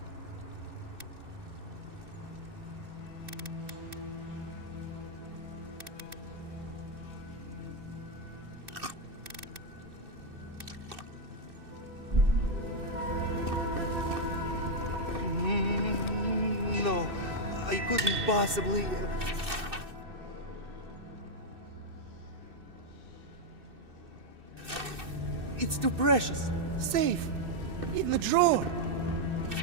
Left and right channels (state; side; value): late; left; 2.6 ms